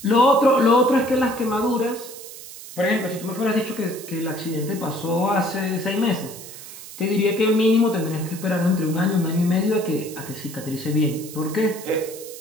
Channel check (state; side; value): noise; right; hiss, 14 dB below the sound